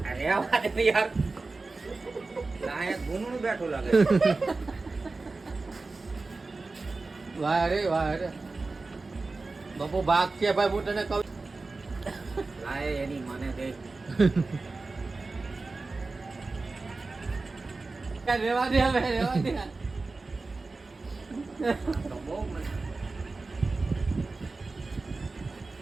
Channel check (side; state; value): left; quieter; 3.7 dB